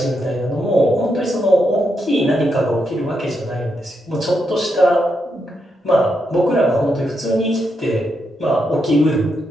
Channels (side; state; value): both; normal; correlation 0.82